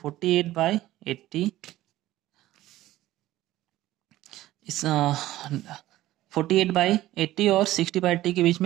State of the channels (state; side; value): quieter; left; 15.4 dB